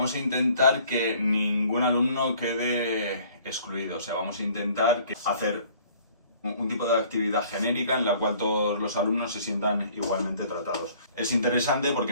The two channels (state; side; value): inverted; both; correlation -0.55